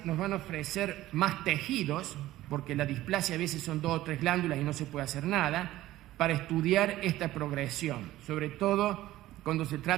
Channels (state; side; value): quieter; left; 15.5 dB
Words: nos van a ofrecer más tejidos, porque la displasia a veces son 2 o 3 glándulas y no se puede hacer nada, para estudiar esta progresión, sobre todo cuando se